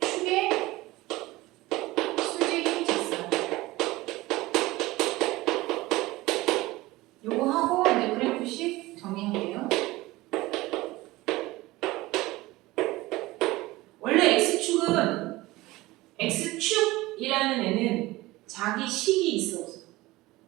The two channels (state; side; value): quieter; left; 19.4 dB